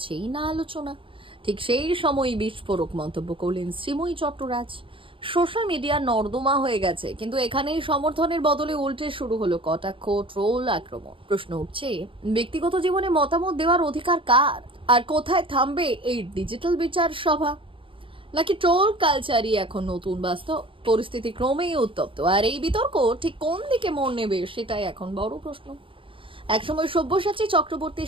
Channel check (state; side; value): late; left; 0.25 ms